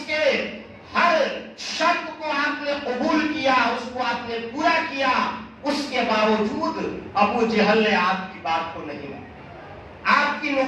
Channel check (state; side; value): identical; both; correlation 1.00